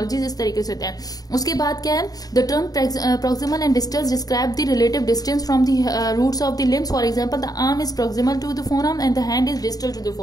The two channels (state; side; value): late; right; 0.18 ms